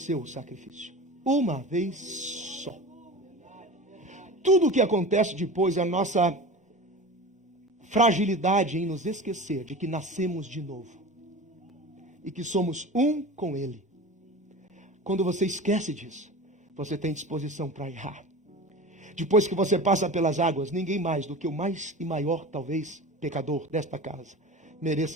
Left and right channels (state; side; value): normal; both; correlation 0.33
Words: o sacrifício. Uma vez só. Tudo o que acontece depois é a nossa fragilidade em nos esquecer de que nascemos de novo. E que somos um com ele. Quando você esquece disso, você tem disposição para errar. Depois que você passa pelas águas, ninguém mais do que o mais e maior, talvez, pecador desta casa